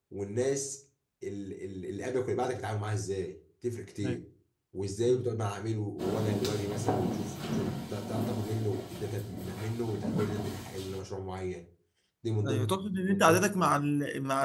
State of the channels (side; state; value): both; identical; correlation 1.00